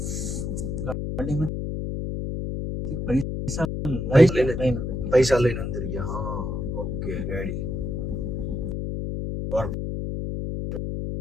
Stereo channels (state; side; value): noise; left; hum, 3 dB below the sound